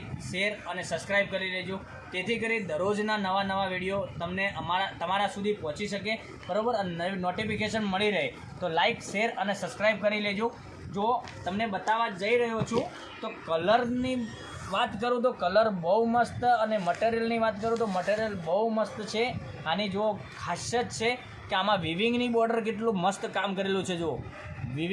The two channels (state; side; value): identical; both; correlation 1.00